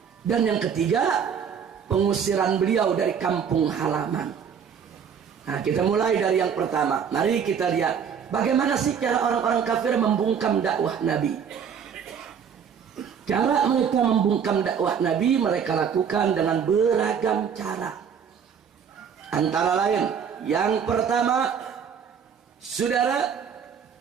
Dan yang ketiga, pengusiran beliau dari kampung halaman. Nah, kita mulai dari yang pertama. Mari kita lihat bagaimana sih cara orang-orang kafir membungkam dakwah Nabi. Cara mereka membungkam dakwah Nabi mereka lakukan dengan beragam cara. Antara lain, yang pertama, saudara,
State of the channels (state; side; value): quieter; left; 7.3 dB